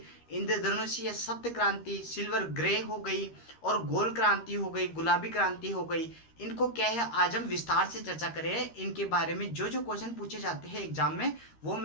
इंद्रधनुषीय सप्त क्रांति, सिल्वर ग्रे हो गई और गोल क्रांति हो गई, गुलाबी क्रांति हो गई। इनको क्या है, आज हम विस्तार से चर्चा करें। इनके बारे में जो जो क्वेश्चन पूछे जाते हैं एग्जाम में वो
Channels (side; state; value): right; late; 13 ms